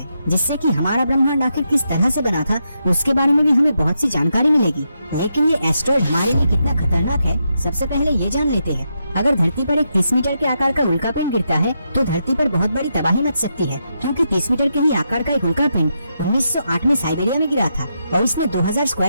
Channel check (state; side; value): inverted; both; correlation -0.83